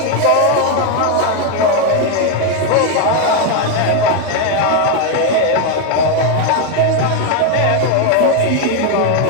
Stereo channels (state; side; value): different; both; correlation 0.01